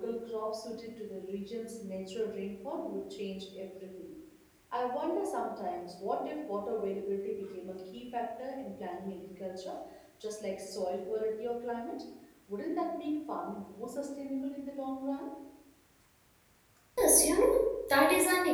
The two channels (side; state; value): both; identical; correlation 1.00